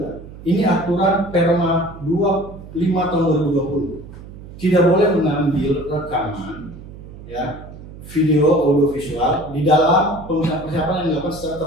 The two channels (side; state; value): right; noise; hum, 16 dB below the sound